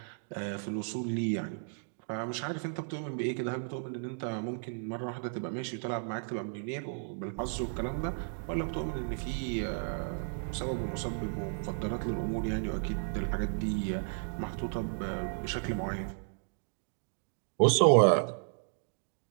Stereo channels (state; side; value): silent; left; digital silence